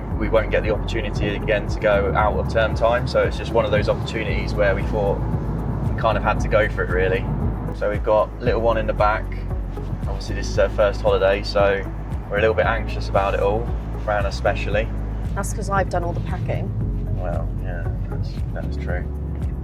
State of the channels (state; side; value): identical; both; correlation 1.00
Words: won't get the opportunity again to go out of term time, so it's just one of those opportunities where we thought we kind of had to go for it really. So we've got little one in the back. Obviously this is her first holiday, so we're a little bit anxious about it all, Fran especially. That's because I've done all the packing. Well, yeah, that's true.